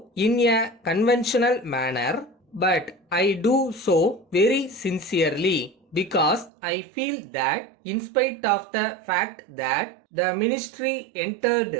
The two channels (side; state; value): left; drops out; at 6.5 s